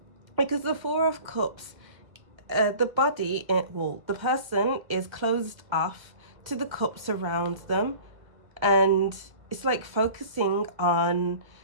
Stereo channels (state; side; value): late; left; 1.8 ms